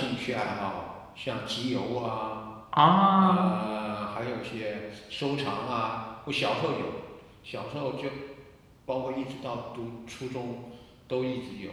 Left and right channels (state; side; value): identical; both; correlation 1.00